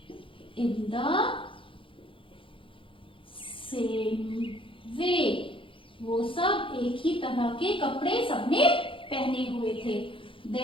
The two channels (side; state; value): right; late; 0.25 ms